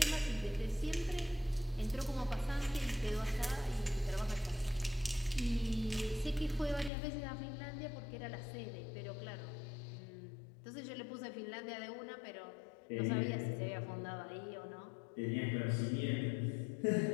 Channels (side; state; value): right; drops out; at 6.9 s